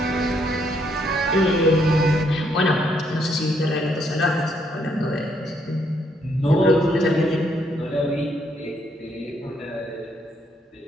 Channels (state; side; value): normal; both; correlation 0.72